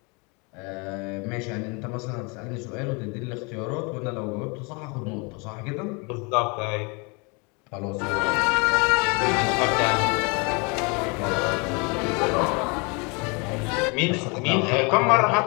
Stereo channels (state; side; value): quieter; right; 30.9 dB